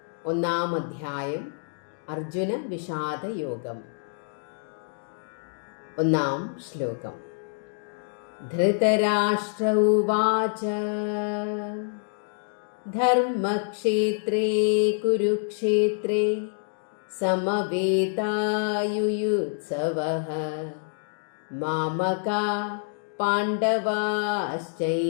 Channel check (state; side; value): silent; right; digital silence